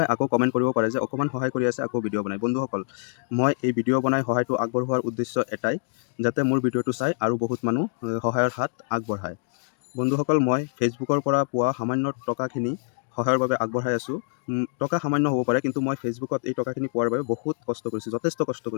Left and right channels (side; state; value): right; silent; digital silence